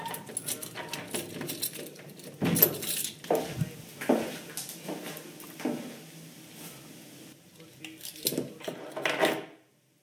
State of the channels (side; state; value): both; identical; correlation 1.00